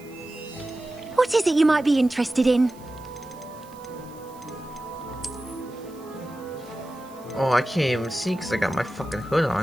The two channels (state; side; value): noise; right; hiss, 25 dB below the sound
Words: What is it you might be interested in? Oh, I can't even see because I got my fucking hood